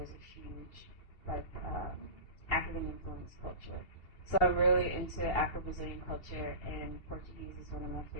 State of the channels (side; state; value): right; late; 2.7 ms